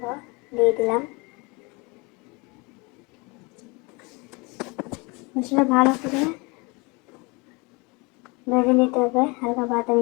দিয়ে দিলাম। মশলা ভালো করে ভেজে নিতে হবে, হালকা বাদামি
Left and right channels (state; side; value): quieter; right; 27.7 dB